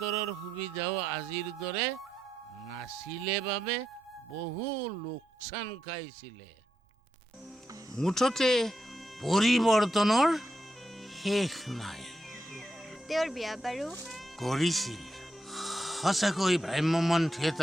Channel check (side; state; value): both; normal; correlation 0.84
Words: সুবিধাও আজিৰ দৰে নাছিলে বাবে বহু লোকচান খাইছিলে। মুঠতে পৰিৱৰ্তনৰ শেষ নাই। তেওঁৰ বিয়া বাৰু কৰিছিল। সঁচাকৈ ভ্ৰাম্যমান